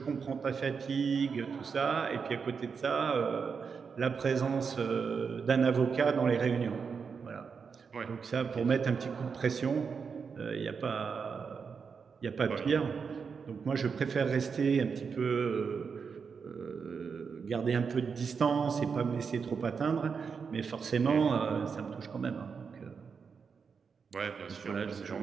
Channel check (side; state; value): left; quieter; 5.8 dB